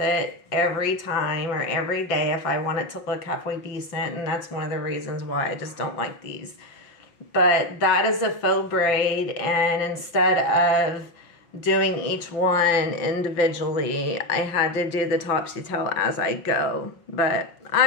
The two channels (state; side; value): late; right; 5.9 ms